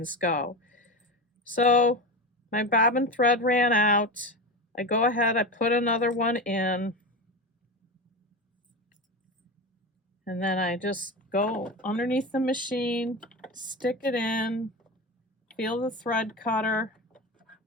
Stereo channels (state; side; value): normal; both; correlation 0.23